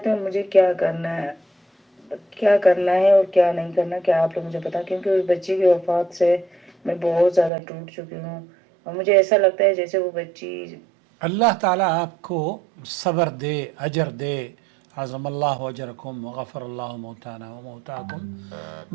में मुझे क्या करना है और क्या नहीं करना, क्या आप लोग मुझे बताएं, क्योंकि उस बच्ची की वफात से मैं बहुत ज़्यादा टूट चुकी हूँ और मुझे ऐसा लगता है जैसे वो बच्ची। अल्लाह ताला आपको सब्र दे, अजर दे। आज़मल्लाहु अजरकुम व गफ़रल्लाहु मौताना व मौताकुम।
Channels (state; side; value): drops out; left; at 7.5 s